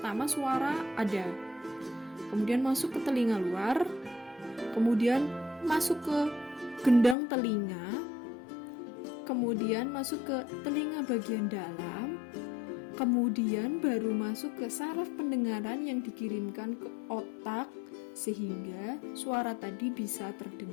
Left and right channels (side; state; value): right; drops out; at 7.2 s